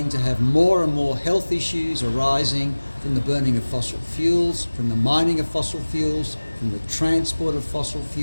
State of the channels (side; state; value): both; inverted; correlation -1.00